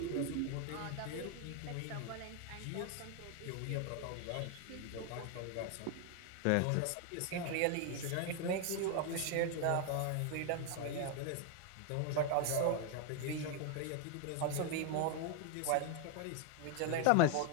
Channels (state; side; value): different; both; correlation 0.01